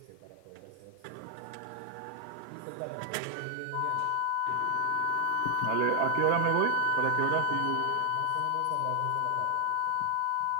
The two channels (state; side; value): different; both; correlation 0.00